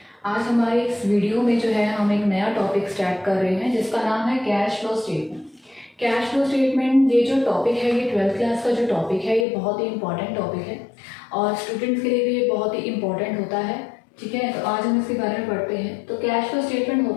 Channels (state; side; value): drops out; right; at 9.5 s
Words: आज हमारे इस वीडियो में जो है हम एक नया टॉपिक स्टार्ट कर रहे हैं जिसका नाम है cash flow statement. Cash flow statement ये जो टॉपिक है ये 12th क्लास का जो टॉपिक है ये बहुत ही इंपॉर्टेंट टॉपिक है और स्टूडेंट्स के लिए भी ये बहुत ही इंपॉर्टेंट होता है। ठीक है, तो आज हम इसके बारे में पढ़ते हैं। तो कैश फ्लो स्टेटमेंट